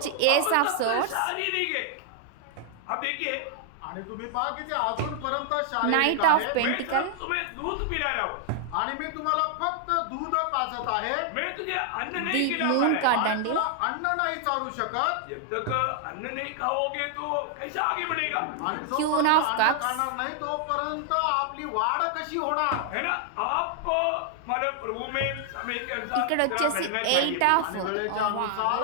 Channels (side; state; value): both; different; correlation 0.00